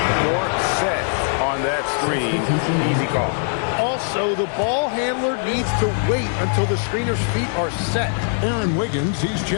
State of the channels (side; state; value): right; silent; digital silence